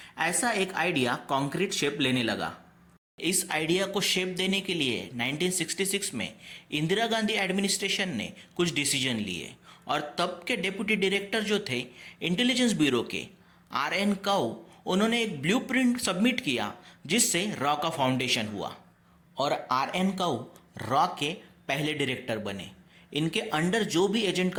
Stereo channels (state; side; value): identical; both; correlation 1.00